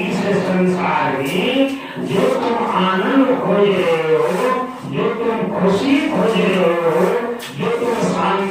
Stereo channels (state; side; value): identical; both; correlation 1.00